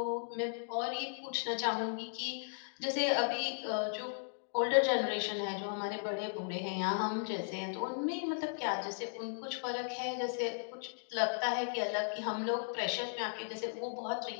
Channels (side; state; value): right; silent; digital silence